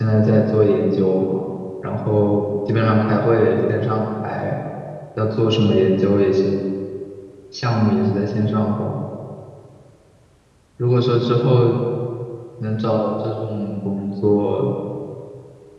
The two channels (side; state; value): both; identical; correlation 1.00